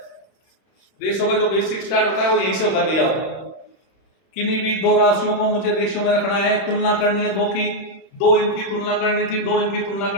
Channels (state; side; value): late; right; 31 ms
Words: रेशियो का जो बेसिक स्टार्ट होता है वो यही से होता है भैया। किन्हीं भी दो राशियों को मुझे रेशियो में रखना है, तुलना करनी है दो की, दो इनकी तुलना करनी थी, दो इनकी तुलना